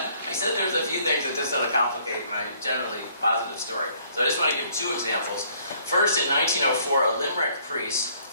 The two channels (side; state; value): both; inverted; correlation -0.62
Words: I said there's a few things that just sort of complicate my generally positive story. So I just want to give two examples. First, in 1904, a Limerick priest,